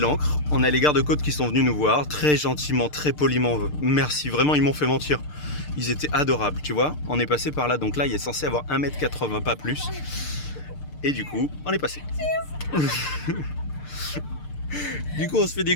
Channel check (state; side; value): late; right; 6.7 ms